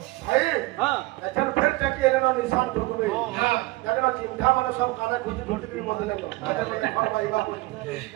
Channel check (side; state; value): left; quieter; 20.9 dB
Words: भाई लेकिन फिर तक ये ना निशान ठोक में जाके ना चिंता माने सब काने खुशी छोटी सी बदले को आगे और भाई बा